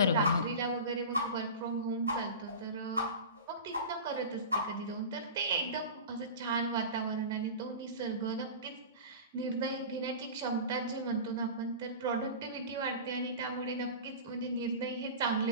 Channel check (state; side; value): inverted; both; correlation -0.31